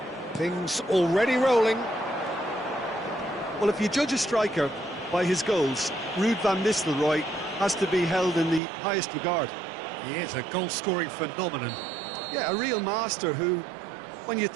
Things already rolling. Well, if you judge a striker by his goals, Ruud van Nistelrooy has to be held in the highest regard. He is a goal-scoring phenomenon. Yeah, a real master who, when you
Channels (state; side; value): drops out; left; at 8.6 s